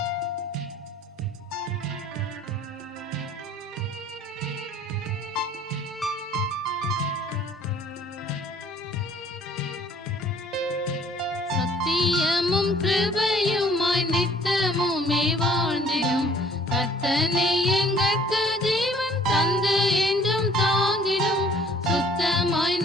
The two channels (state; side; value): normal; both; correlation 0.56